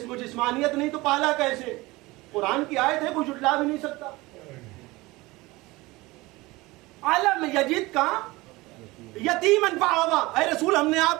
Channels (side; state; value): left; quieter; 21.3 dB